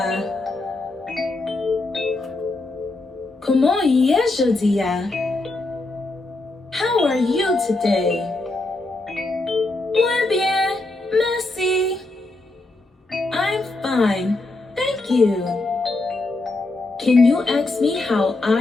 Comment y est jeudi? How are you today? Muy bien, merci. I'm fine, thank you. Can you ask me how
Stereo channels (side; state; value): right; quieter; 3.0 dB